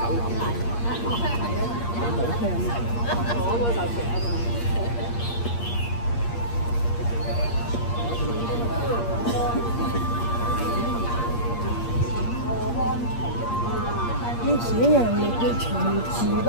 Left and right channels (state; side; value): late; right; 8.5 ms